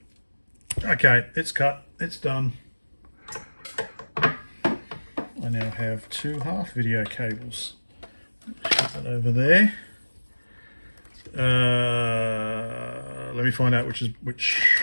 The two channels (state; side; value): inverted; both; correlation -1.00